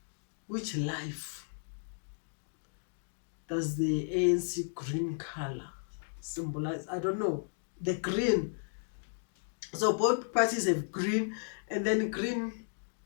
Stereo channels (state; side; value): silent; right; digital silence